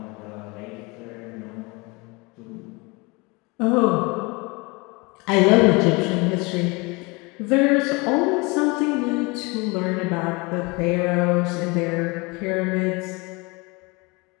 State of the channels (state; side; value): quieter; right; 26.9 dB